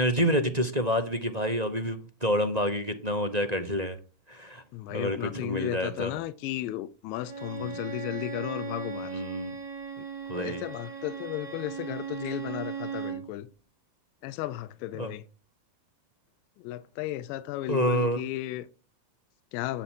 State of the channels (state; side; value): late; left; 1.9 ms